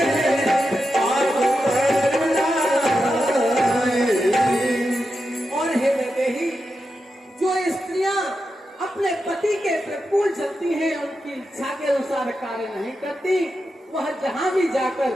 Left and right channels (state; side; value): normal; both; correlation 0.89